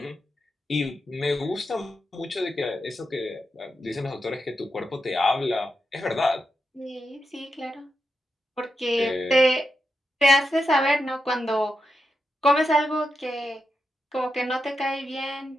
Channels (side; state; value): both; normal; correlation 0.87